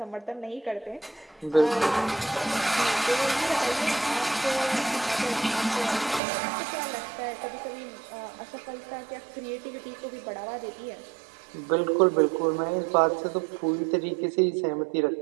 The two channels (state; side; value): drops out; left; at 6.2 s